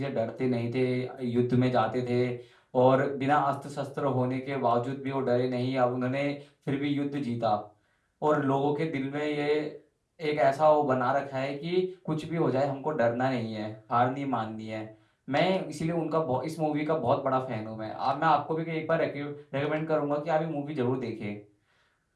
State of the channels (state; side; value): identical; both; correlation 1.00